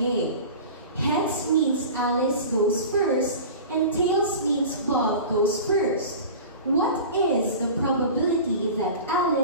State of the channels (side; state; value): both; inverted; correlation -0.35